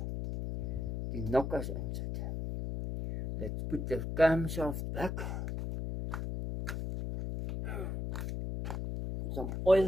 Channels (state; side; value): noise; left; hum, 3 dB below the sound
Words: nokkers insit. Let's put the camshaft back. Some